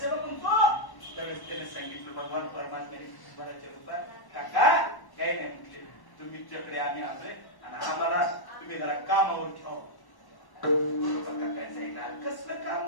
म्हणतो. त्यावेळेस त्याने सांगितलं भगवान परमात्म्याने कुंभाराच्या रूपात, काका काही नाही म्हटले, तुमच्याकडे आम्ही आलोय आणि आम्हाला तुम्ही जरा कामावर ठेवा. बरोबर काय सांगितलं, कसलं काम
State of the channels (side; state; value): right; late; 1.1 ms